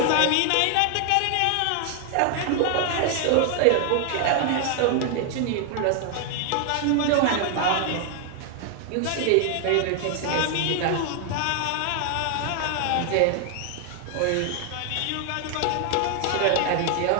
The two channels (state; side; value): different; both; correlation 0.00